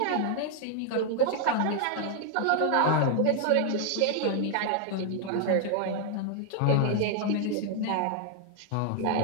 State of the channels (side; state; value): both; different; correlation 0.00